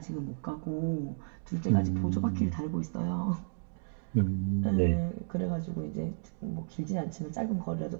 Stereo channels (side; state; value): left; silent; digital silence